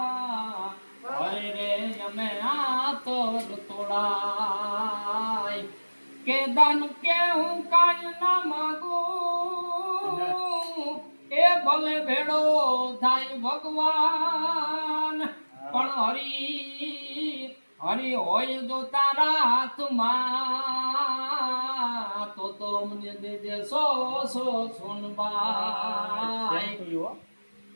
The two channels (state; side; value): inverted; both; correlation -1.00